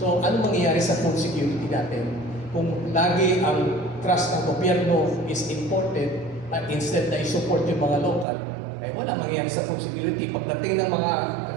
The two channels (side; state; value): left; drops out; at 8.2 s